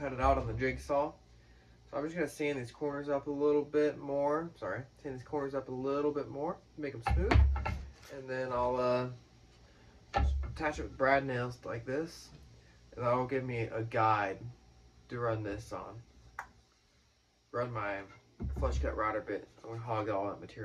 it out on the jigsaw. So I'm just going to sand these corners up a little bit more. Sand these corners up a little bit more, make them smooth. And then I'll just attach it with brad nails like this. And that'll give me a guide to run this on. Run my flush cut router bit. I'm going to hog all that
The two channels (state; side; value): identical; both; correlation 1.00